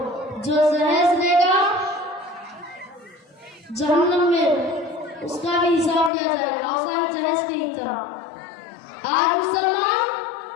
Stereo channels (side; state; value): right; drops out; at 6.1 s